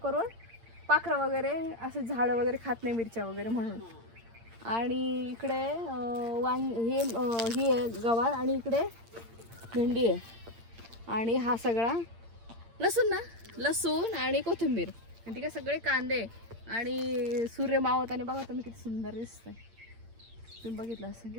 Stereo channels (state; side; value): late; left; 8.7 ms